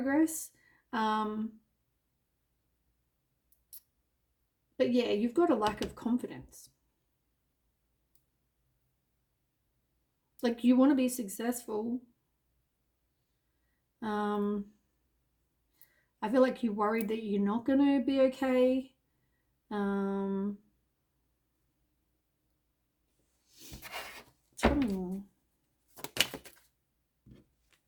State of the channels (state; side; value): identical; both; correlation 1.00